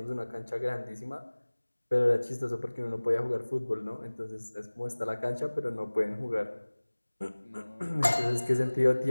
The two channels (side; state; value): both; inverted; correlation -1.00